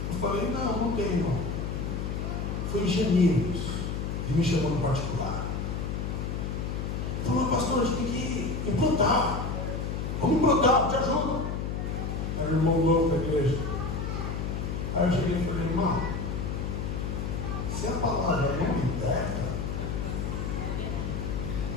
Eu falei: não tem não. Foi ingenieiros e me chamou no particular. Falou: pastor, a gente tem que implantar. Vamos implantar, te ajudo. Era o irmão novo da igreja. Aí eu cheguei e falei: irmão, se a palavra não liberta,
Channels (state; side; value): noise; left; hum, 3 dB below the sound